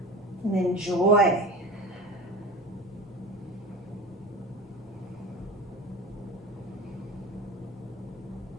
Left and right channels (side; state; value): both; normal; correlation 0.33